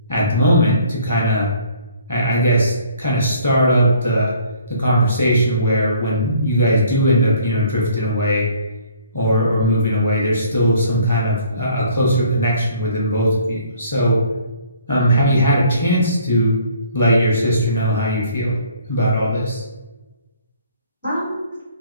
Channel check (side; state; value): both; inverted; correlation -0.57